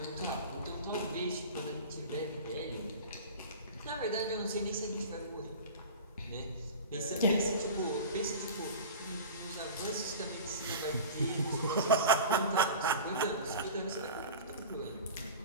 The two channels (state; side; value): inverted; both; correlation -0.35